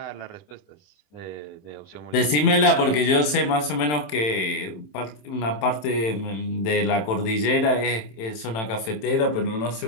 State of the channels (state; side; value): late; right; 27 ms